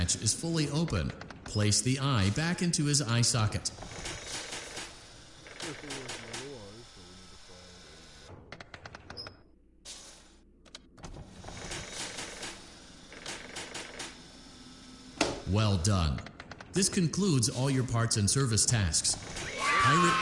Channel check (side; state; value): both; identical; correlation 1.00